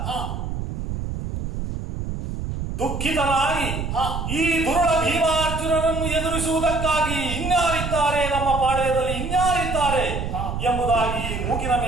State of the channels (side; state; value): right; noise; rumble, 5 dB below the sound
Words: ದುಃಖಿತನಾಗಿ ಈ ದುರುಳ ಭೀಮಾರ್ಜುನರನ್ನು ಎದುರಿಸುವುದಕ್ಕಾಗಿ ಇನ್ಯಾರಿದ್ದಾರೆ, ನಮ್ಮ ಪಾಳ್ಯದಲ್ಲಿ ಇನ್ಯಾರಿದ್ದಾರೆ ಎಂಬುದಾಗಿ ಮೂಗಿನ